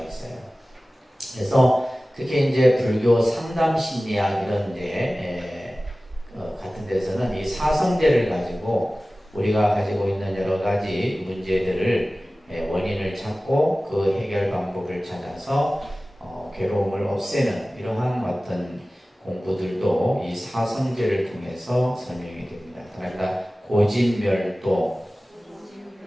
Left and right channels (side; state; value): both; normal; correlation 0.97